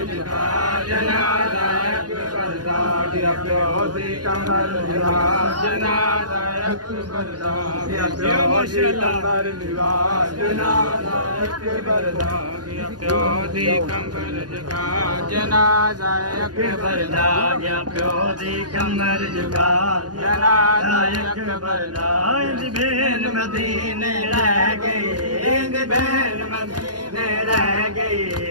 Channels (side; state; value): left; late; 0.69 ms